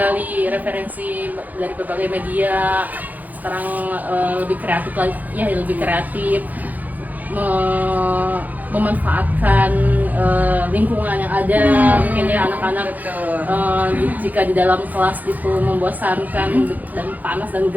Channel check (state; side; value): late; left; 0.081 ms